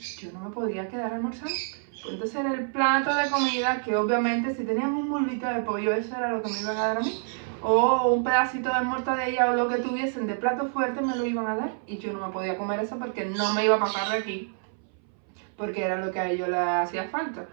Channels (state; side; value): silent; left; 58 dB below the other